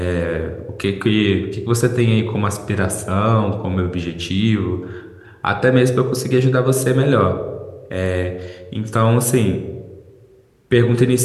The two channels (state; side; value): identical; both; correlation 1.00